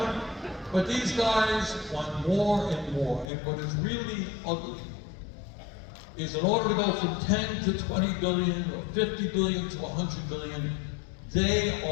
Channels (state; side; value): drops out; right; at 3.2 s